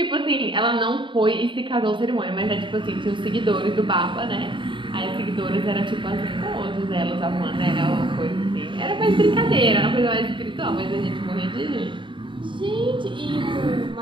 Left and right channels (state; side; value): late; left; 0.24 ms